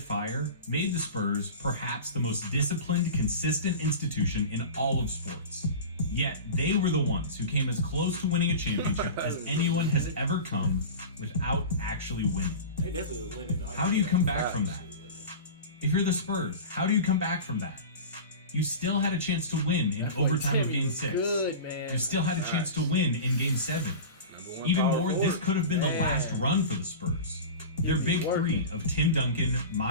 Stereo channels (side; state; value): both; inverted; correlation -0.31